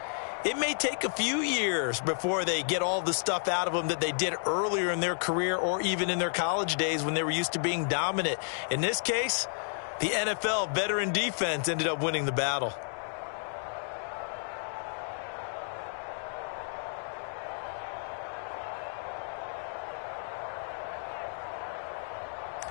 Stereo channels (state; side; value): silent; right; digital silence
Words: it may take a few years before they get all the stuff out of them that they did earlier in their career or even in their college days when they were used to being dominant. In this case, the NFL veteran defense ended up winning the battle.